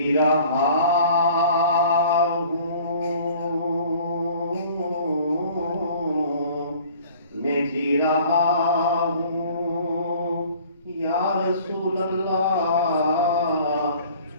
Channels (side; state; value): both; inverted; correlation -0.50